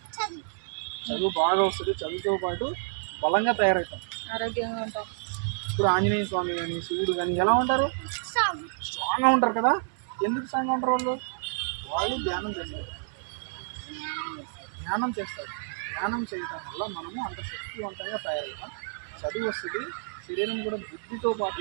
చదువు బాగా వస్తుంది. చదువుతో పాటు బలంగా తయారవుతాం, ఆరోగ్యంగా ఉంటాం. ఇప్పుడు ఆంజనేయ స్వామి కానీ శివుడు కానీ ఎలా ఉంటారు? స్ట్రాంగ్గా ఉంటారు కదా. ఎందుకు స్ట్రాంగ్గా ఉంటారు వాళ్ళు? వాళ్ళు ధ్యానం చేస్తారు, ధ్యానం చేస్తారు. ధ్యానం చేయటం వల్ల మనము అంత శక్తివంతంగా తయారవుతాం, చదువు వస్తుంది, శరీరం కూడా బుద్ధితో పాటు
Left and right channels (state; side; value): silent; left; digital silence